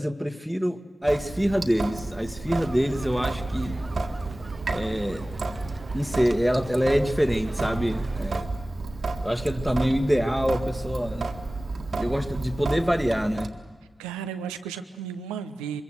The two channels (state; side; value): normal; both; correlation 0.96